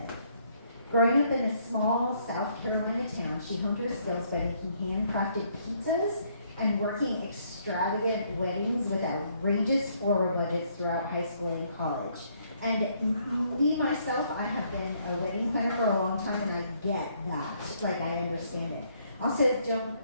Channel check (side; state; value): both; inverted; correlation -0.69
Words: Growing up in a small South Carolina town, she honed her skills by making handcrafted pizzas and working extravagant weddings with outrageous floral budgets throughout high school and college. And me, myself, I have been a wedding planner for a long time, and I get that. Like, I understand it. Also,